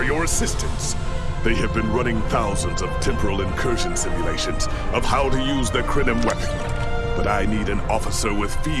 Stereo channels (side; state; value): both; identical; correlation 1.00